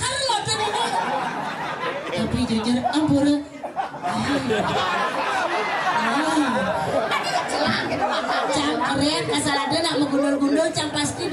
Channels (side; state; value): both; identical; correlation 1.00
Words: loh tuh. Tapi jujur ampura. tadi ya celang gitu mata. Jam keren asal ada nak menggundul-gundul jam pasti